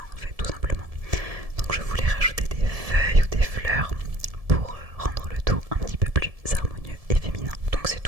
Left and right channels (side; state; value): left; late; 1.7 ms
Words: en fait, tout simplement. Donc je voulais rajouter des feuilles ou des fleurs pour rendre le tout un petit peu plus harmonieux et féminin. Donc c'est